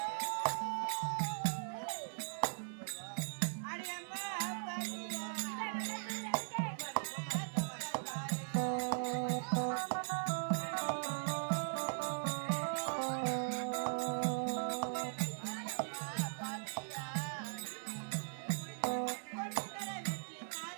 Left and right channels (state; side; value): silent; left; 51 dB below the other